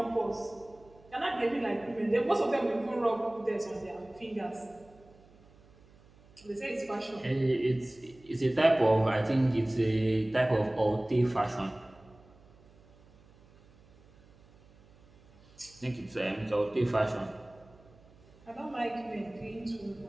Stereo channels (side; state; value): right; noise; hum, 27 dB below the sound